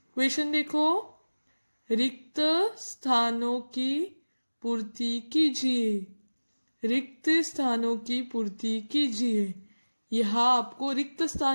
क्वेश्चन देखो। रिक्त स्थानों की पूर्ति कीजिए। रिक्त स्थानों की पूर्ति कीजिए। यहाँ आपको रिक्त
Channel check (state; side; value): inverted; both; correlation -1.00